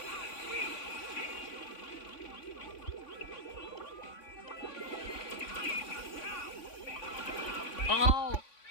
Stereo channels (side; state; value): right; late; 3.5 ms